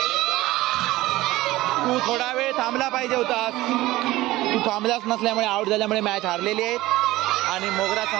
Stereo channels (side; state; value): left; quieter; 17.6 dB